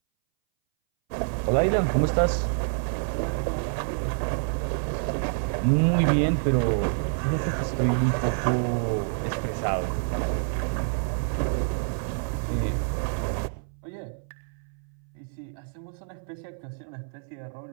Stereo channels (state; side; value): silent; left; 60 dB below the other